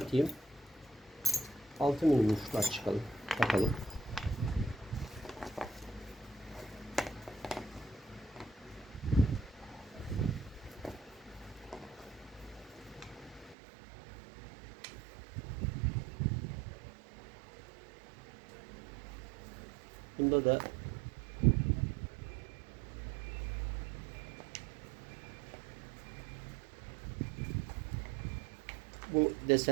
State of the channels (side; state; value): left; drops out; at 13.6 s